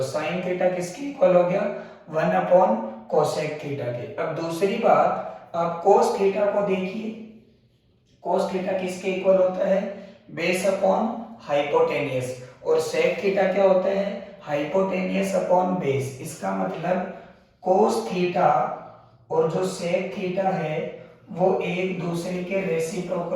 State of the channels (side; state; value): both; identical; correlation 1.00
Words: साइन थीटा किसके इक्वल हो गया? 1 अपॉन कोसेक थीटा के। अब दूसरी बात, आप कोस थीटा को देखिए, कोस थीटा किसके इक्वल होता है, बेस अपॉन हाइपोटेनियस, और सेक थीटा क्या होता है, हाइपोटेनियस अपॉन बेस। इसका मतलब कोस थीटा और जो सेक थीटा है वो एक दूसरे के